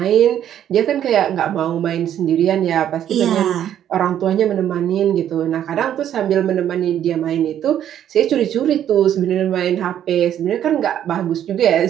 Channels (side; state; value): left; quieter; 10.5 dB